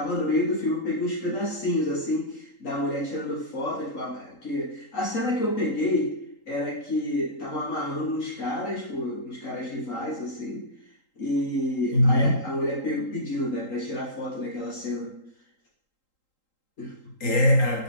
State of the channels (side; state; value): right; late; 3.8 ms